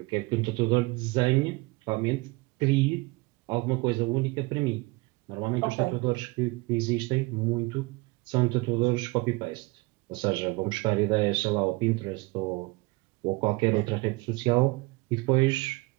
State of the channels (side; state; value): left; quieter; 24.2 dB